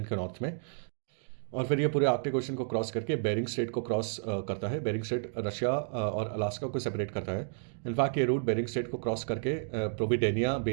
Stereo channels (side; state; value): left; silent; digital silence